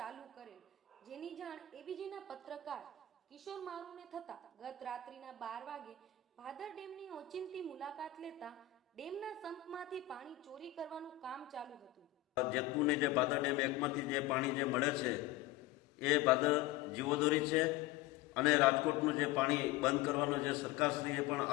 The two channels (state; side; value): quieter; right; 12.4 dB